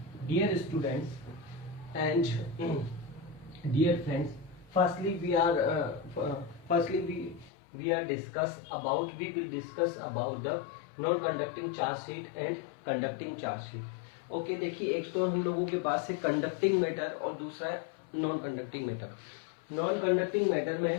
Dear students and dear friends, firstly we will discuss about the non conducting charge sheet and conducting charge sheet. Okay, देखिए एक तो हम लोगों के पास है conducting matter और दूसरा है non conducting matter. Non conducting matter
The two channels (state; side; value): drops out; right; at 7.5 s